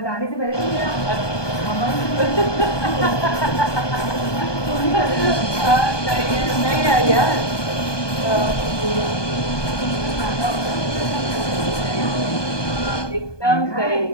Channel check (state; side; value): late; right; 1.2 ms